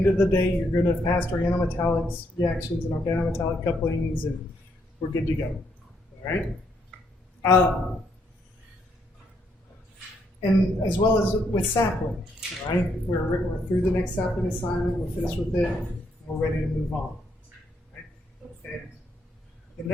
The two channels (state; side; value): normal; both; correlation 0.75